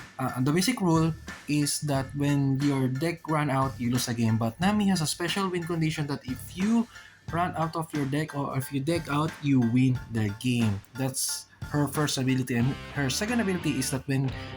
the basic rule is that when your deck run out, you lose a game. But Nami has a special win condition that if you run out of your deck or if you deck out, you win the game. That's her first ability, and her second ability is that when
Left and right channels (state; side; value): identical; both; correlation 1.00